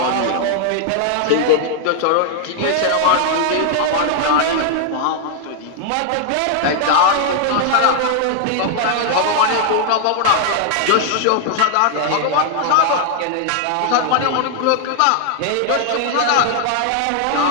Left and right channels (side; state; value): both; different; correlation 0.00